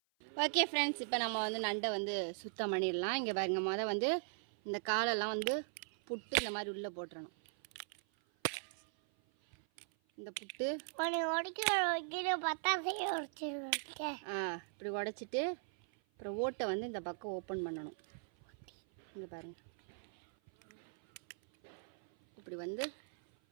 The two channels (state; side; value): silent; left; 52 dB below the other